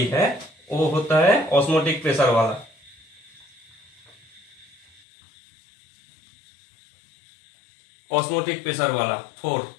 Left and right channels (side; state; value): right; drops out; at 5.0 s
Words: है वो होता है ऑस्मोटिक प्रेशर वाला। Fourth